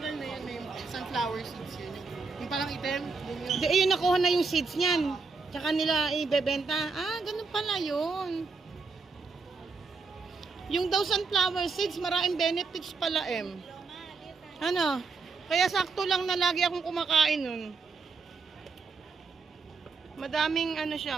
na yan, may sunflower seeds yun. Yung parang item, yun yun. Di, ayun, nakuha na yung seeds niyan. Tsaka nila ibebenta. Ah, ganun pala yun. Yung daw sunflower seeds, maraming benefits pala, Ano? Kaya sakto lang na lagi akong kumakain nun. Madaming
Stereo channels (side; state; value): left; quieter; 4.5 dB